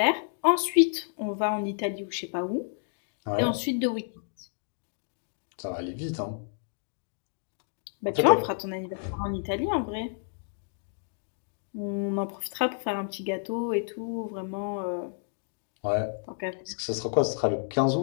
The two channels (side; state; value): right; silent; digital silence